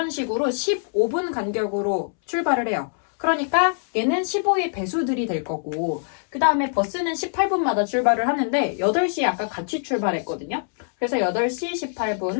식으로 15분 간격으로 출발을 해요. 그러니까 얘는 15의 배수들이 될 거고, 그 다음에 버스는 18분마다 출발을 하는데 8시에 아까 같이 출발했거든요. 그래서 8시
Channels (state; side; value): silent; right; 63 dB below the other